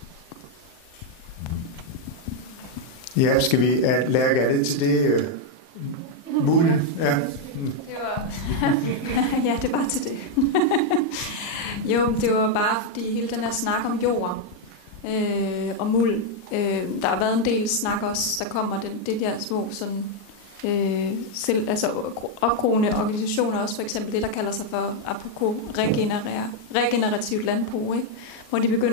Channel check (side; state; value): right; late; 38 ms